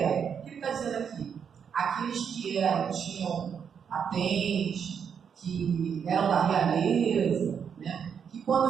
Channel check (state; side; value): quieter; left; 7.3 dB